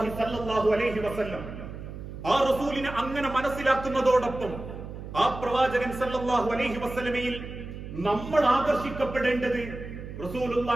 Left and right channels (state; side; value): noise; right; hum, 10 dB below the sound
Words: സല്ലല്ലാഹു അലൈഹി വസല്ലം. ആ റസൂലിനെ അങ്ങനെ മനസ്സിലാക്കുന്നതോടൊപ്പം ആ പ്രവാചകൻ സല്ലല്ലാഹു അലൈഹി വസല്ലമയിൽ നമ്മൾ ആകർഷിക്കപ്പെടേണ്ടത്